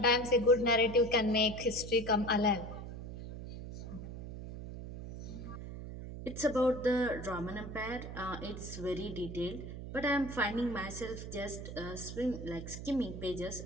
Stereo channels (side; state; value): right; noise; hum, 9 dB below the sound